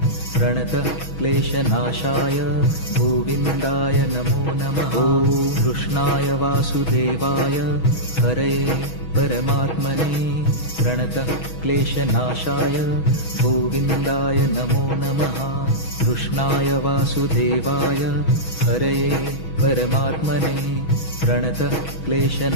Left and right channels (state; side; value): late; right; 6.2 ms